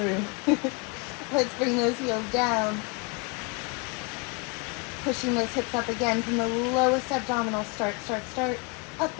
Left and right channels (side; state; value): right; quieter; 31.1 dB